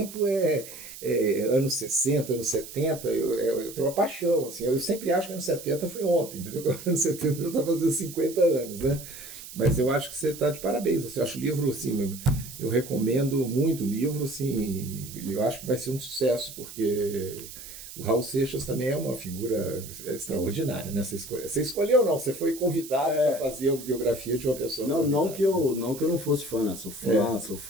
anos 60, anos 70, eu tenho uma paixão, assim, eu sempre acho que anos 70 foi ontem, entendeu? Anos 70 eu estava fazendo 50 anos, né? Mas eu acho que você está de parabéns, assim, eu acho o livro, assim, eu recomendo muito o livro, assim, eu acho que vai ser um sucesso, porque o Raul Seixas também é uma figura extraordinária, né? Você escolheu ou não? Você foi convidado para fazer a biografia de uma pessoa. Não que eu não fosse fã, né? Sou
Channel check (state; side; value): noise; right; hiss, 14 dB below the sound